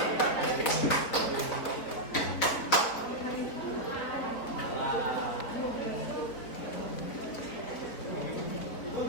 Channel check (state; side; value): late; right; 4.5 ms